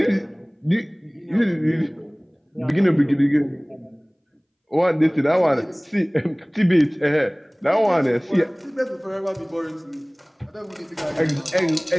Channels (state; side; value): identical; both; correlation 1.00